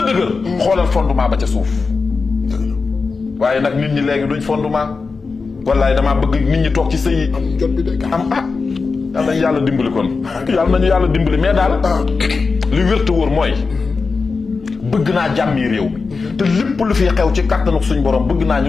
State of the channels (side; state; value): right; quieter; 4.5 dB